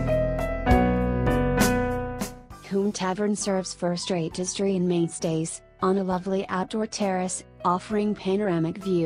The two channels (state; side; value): identical; both; correlation 1.00